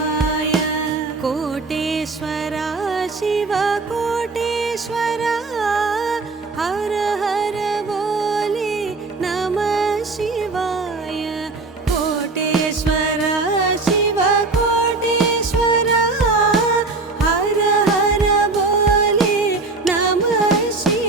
कोटेश्वर शिव कोटेश्वर, हर हर बोले नमः शिवाय। कोटेश्वर शिव कोटेश्वर, हर हर बोले नमः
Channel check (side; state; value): left; quieter; 3.7 dB